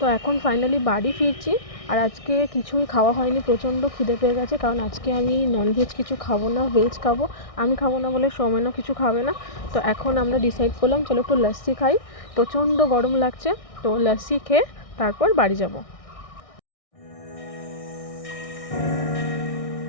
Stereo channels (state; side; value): late; right; 1.6 ms